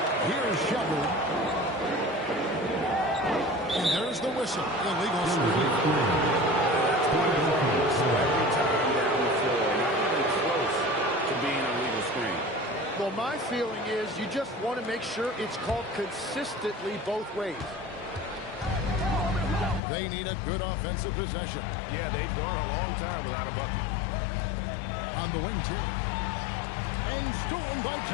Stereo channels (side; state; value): right; drops out; at 19.8 s